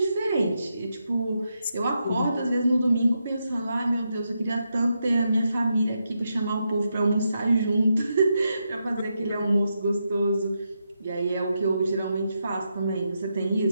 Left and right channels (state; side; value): inverted; both; correlation -0.84